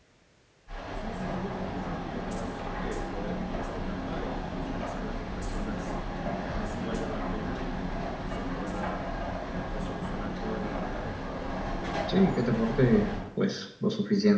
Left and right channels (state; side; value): identical; both; correlation 1.00